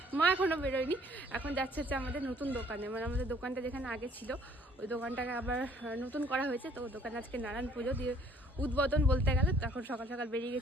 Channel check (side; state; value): both; normal; correlation 0.60